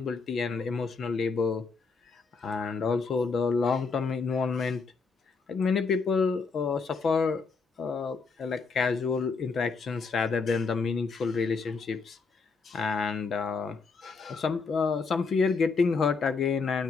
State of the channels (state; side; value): quieter; right; 4.7 dB